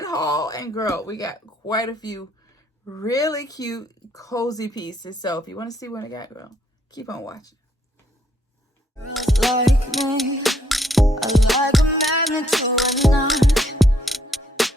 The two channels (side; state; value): both; normal; correlation 0.70